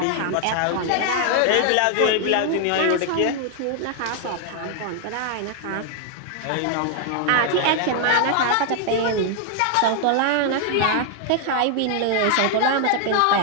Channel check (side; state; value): both; different; correlation 0.00